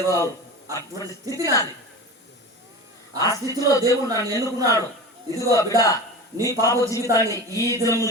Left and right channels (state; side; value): normal; both; correlation 0.31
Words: అటువంటి స్థితి నాది. ఆ స్థితిలో దేవుడు నన్ను ఎన్నుకున్నాడు. ఇదిగో బిడ్డ, నీ పాప జీవితాన్ని ఈ దినం